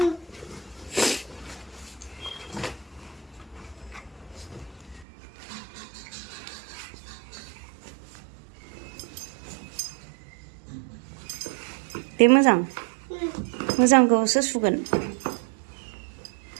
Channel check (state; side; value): drops out; left; at 5.1 s